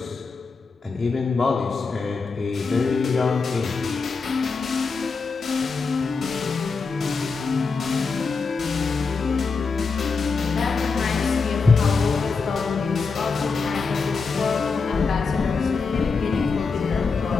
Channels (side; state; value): right; quieter; 4.7 dB